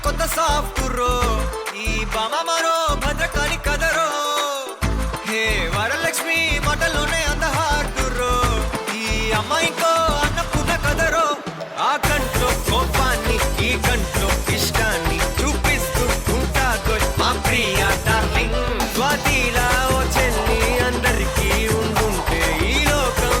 కొత్త సాఫ్ట్ రో ఈ బామ మరో భద్రకాళి కదరో హే వరలక్ష్మి మాటలోనే అంద హార్ట్ రో ఈ అమ్మాయికో అన్నపూర్ణ కదరో ఆ కంట్లో కోపాన్ని ఈ కంట్లో ఇష్టాన్ని చూపిస్తూ ఉంటాదో మా ప్రియ డార్లింగ్ స్వాతిలా ఓ చెల్లి అందరికీ ఉండుంటే ఈ లోకం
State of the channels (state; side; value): identical; both; correlation 1.00